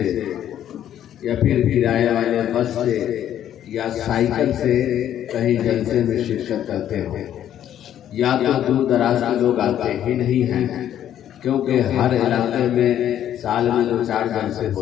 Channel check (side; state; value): right; quieter; 10.8 dB